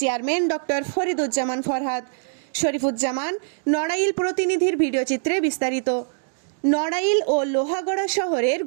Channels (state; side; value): silent; left; digital silence